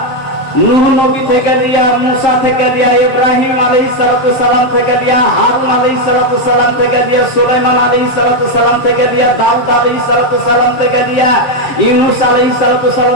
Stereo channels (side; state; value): right; late; 7.6 ms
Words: নূহ নবী থেকে লিয়া, মুসা থেকে লিয়া, ইব্রাহিম আলাইহিস সালাম থেকে লিয়া, হারুন আলাইহিস সালাম থেকে লিয়া, সুলাইমান আলাইহিস সালাম থেকে লিয়া, দাউদ আলাইহিস সালাম থেকে লিয়া, ইউনূস আলাইহিস